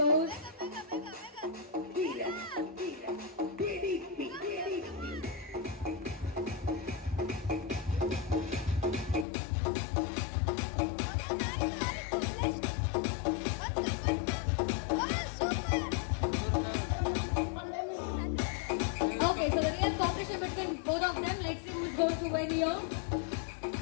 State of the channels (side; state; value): right; drops out; at 9.2 s